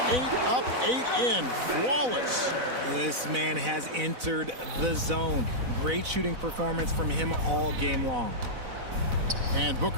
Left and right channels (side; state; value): left; late; 4.0 ms